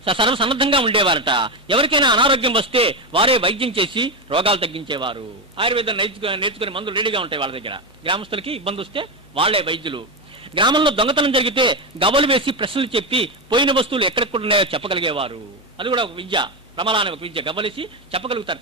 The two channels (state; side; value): normal; both; correlation 0.12